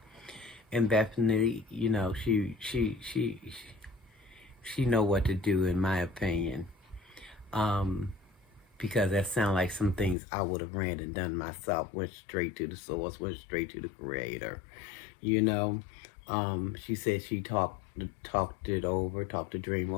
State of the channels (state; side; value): drops out; right; at 10.2 s